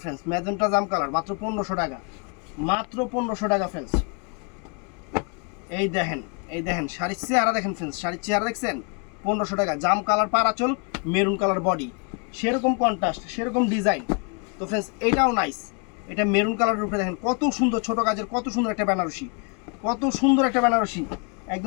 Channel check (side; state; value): right; quieter; 36.2 dB